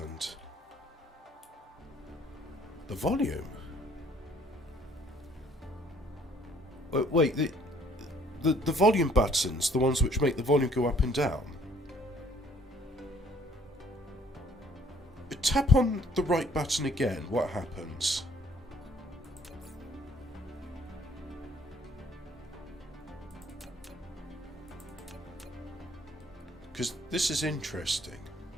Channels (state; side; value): normal; both; correlation 0.61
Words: The volume. Wait, the volume buttons, the ones which make the volume go up and down. Tap on the right button again, what happens? Because this is interesting.